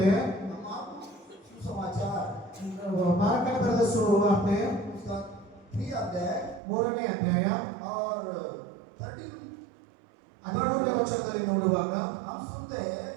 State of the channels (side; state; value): left; drops out; at 6.6 s